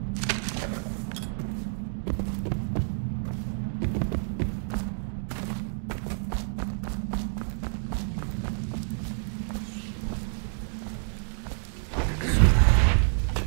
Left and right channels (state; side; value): silent; left; digital silence